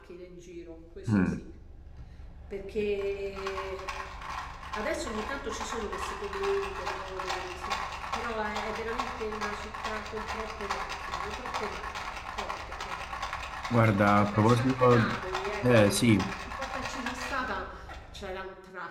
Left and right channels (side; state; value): both; identical; correlation 1.00